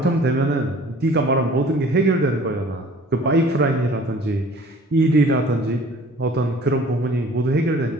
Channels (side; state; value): both; normal; correlation 0.49